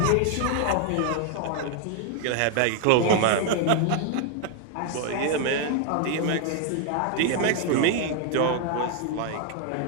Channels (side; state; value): both; different; correlation 0.00